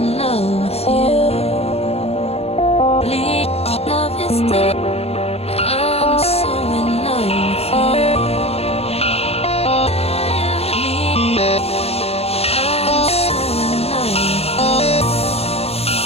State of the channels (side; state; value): right; late; 0.29 ms